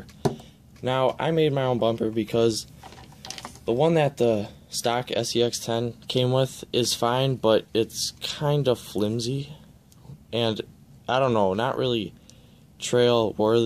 Now, I made my own bumper because the one that the stock SCX10 came with is fine, but it's kind of flimsy, and I don't know, not really trail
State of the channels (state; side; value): identical; both; correlation 1.00